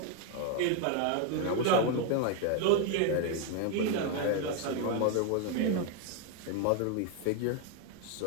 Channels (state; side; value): different; both; correlation 0.01